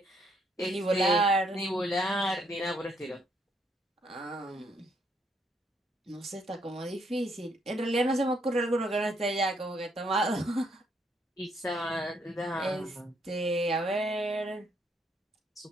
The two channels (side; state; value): both; normal; correlation 0.71